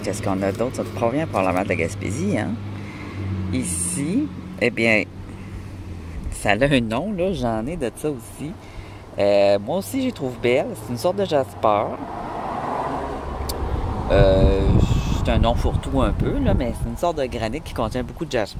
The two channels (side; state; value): both; identical; correlation 1.00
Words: Qu'est-ce qu'on a d'autre? Ça provient probablement de la Gaspésie, hein? Ici, eh bien, ça a un nom, là. J'en ai de ça aussi. Moi aussi, je les trouve belle. C'est une sorte de jasper. C'est un nom fourre-tout un peu, là, mais c'est une sorte de granit qui contient beaucoup de